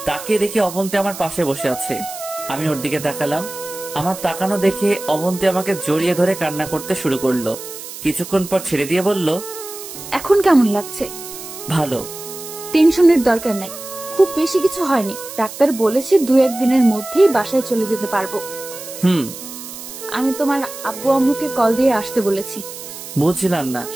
তাকিয়ে দেখে অবন্তী আমার পাশে বসে আছে। আমি ওর দিকে তাকালাম। আমার তাকানো দেখে অবন্তী আমাকে জড়িয়ে ধরে কান্না করতে শুরু করলো। কিছুক্ষণ পর ছেড়ে দিয়ে বলল, এখন কেমন লাগছে? ভালো। টেনশনের দরকার নাই, খুব বেশি কিছু হয়নি। ডাক্তার বলেছে 2-1 দিনের মধ্যেই বাসায় চলে যেতে পারবো। আমি তোমার আব্বু আম্মুকে কল দিয়ে আসতে বলেছি। বুঝছিলাম না,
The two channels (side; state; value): right; noise; hiss, 12 dB below the sound